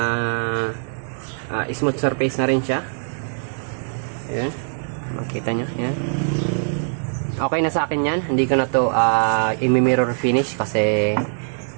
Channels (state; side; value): silent; left; digital silence